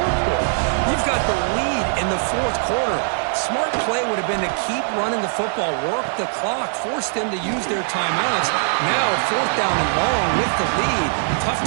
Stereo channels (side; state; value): left; silent; 64 dB below the other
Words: You've got the lead in the 4th quarter. Smart play would have been to keep running the football, work the clock, force them to use their timeouts. Now 4th down and long with the lead. Tough